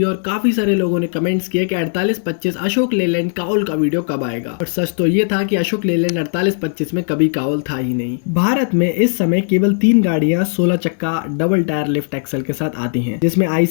और काफी सारे लोगों ने कमेंट्स किए कि 4825 अशोक लेलैंड काउल का वीडियो कब आएगा। और सच तो ये था कि अशोक लेलैंड 4825 में कभी काउल था ही नहीं। भारत में इस समय केवल 3 गाड़ियां 16 चक्का डबल टायर लिफ्ट एक्सल के साथ आती हैं, जिसमें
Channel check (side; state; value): right; silent; 68 dB below the other